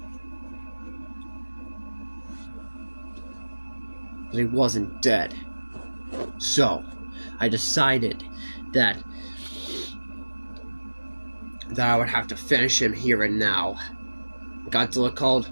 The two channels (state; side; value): inverted; both; correlation -1.00